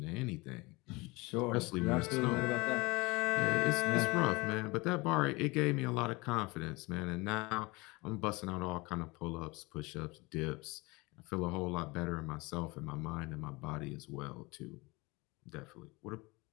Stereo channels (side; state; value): right; quieter; 24.2 dB